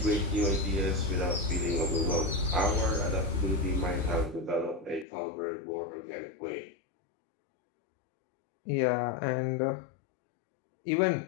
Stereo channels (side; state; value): right; drops out; at 5.1 s